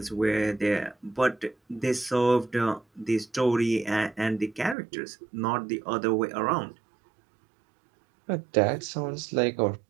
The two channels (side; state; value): left; drops out; at 4.8 s